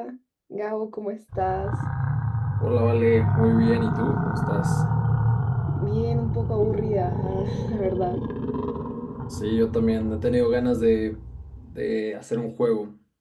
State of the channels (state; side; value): identical; both; correlation 1.00